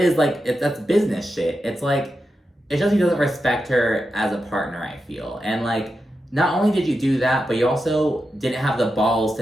like, that's business shit. It's like, it shows he doesn't respect her as a partner, I feel. And, like, not only did you do that, but you also didn't have the balls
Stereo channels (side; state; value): both; normal; correlation 0.89